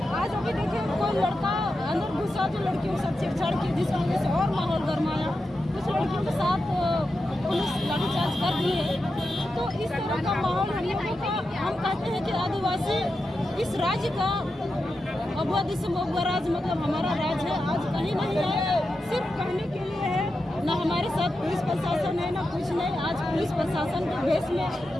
आज अभी देखिए कोई लड़का अंदर घुसा जो लड़कियों के साथ छेड़छाड़ की, जिसकी वजह से और माहौल गर्माया। कुछ लड़कियों के साथ पुलिस लाठीचार्ज कर दी है। तो इस तरह का माहौल हम लोगों का, हम कहते हैं कि आदिवासी इस राज्य का अगुआ दिसंबर राज, मतलब हमारा राज है, आज कहीं नहीं है, सिर्फ कहने के लिए है। ना हमारे साथ पुलिस प्रशासन है, ना कुछ नहीं। आज पुलिस प्रशासन के भेष में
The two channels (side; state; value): both; normal; correlation 0.89